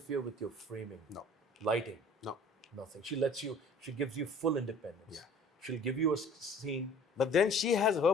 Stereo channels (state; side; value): normal; both; correlation 0.49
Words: with your framing? No. Lighting? No. Nothing. She gives you full independence. Yeah. She'll give you a scene. But then she has her